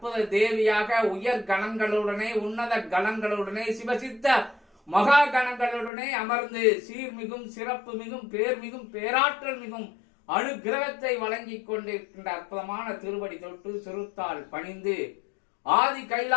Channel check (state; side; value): drops out; right; at 5.9 s